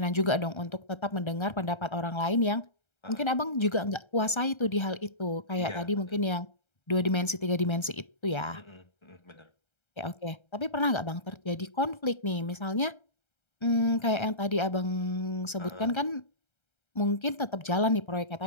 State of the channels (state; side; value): late; right; 1.3 ms